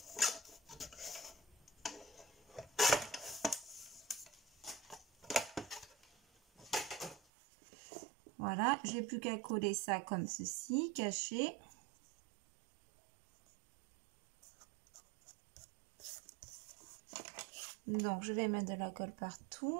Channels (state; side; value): drops out; left; at 7.2 s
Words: Voilà, j'ai plus qu'à coller ça comme ceci, caché. Donc, je vais mettre de la colle